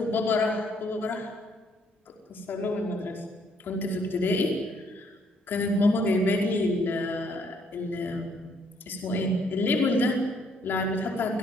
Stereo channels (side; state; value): both; normal; correlation 0.67